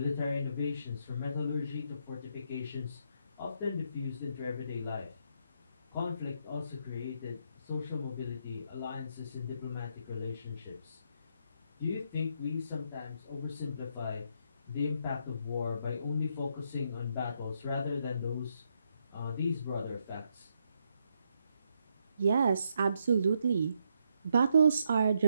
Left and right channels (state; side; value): inverted; both; correlation -0.77